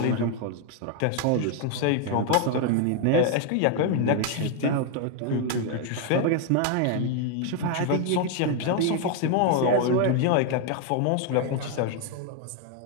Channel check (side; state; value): both; different; correlation 0.00